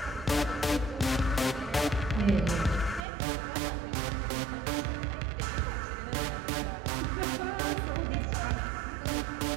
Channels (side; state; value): left; drops out; at 3.1 s